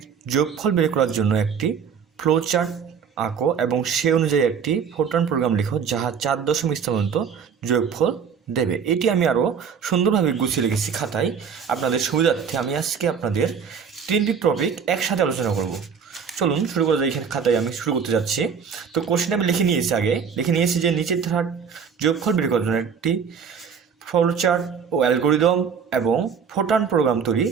যোগফল বের করার জন্য একটি ফ্লোচার্ট আঁকো এবং সে অনুযায়ী একটি ফোরট্রান প্রোগ্রাম লিখো যাহা 4 দশমিক স্থান পর্যন্ত যোগফল দেবে। এটি আমি আরও সুন্দরভাবে গুছিয়ে রেখেছি খাতায়। আপনাদের সুবিধার্থে আমি আজকে আপনাদের 3টি টপিক একসাথে আলোচনা করব। চলুন শুরু করা যায়। এখানে খাতায় আমি শুরু করতে যাচ্ছি। তো কোশ্চেন আমি লিখে নিয়েছি যে নিচের ধারার যোগফল বের করার জন্য একটি ফ্লোচার্ট ও অ্যালগরিদম এবং ফোরট্রান প্রোগ্রাম তৈরি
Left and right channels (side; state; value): left; quieter; 6.7 dB